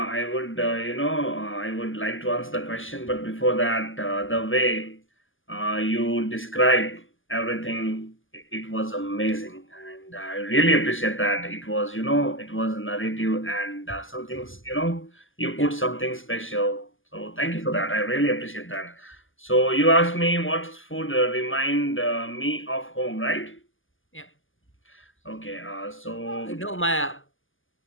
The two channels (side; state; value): right; late; 0.58 ms